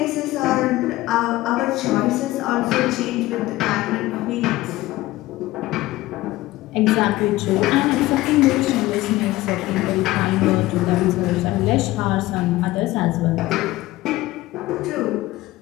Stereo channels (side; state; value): right; quieter; 17.6 dB